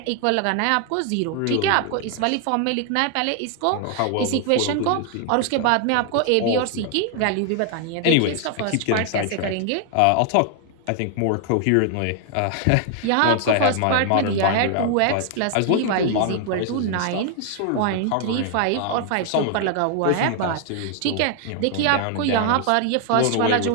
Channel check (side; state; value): both; different; correlation 0.00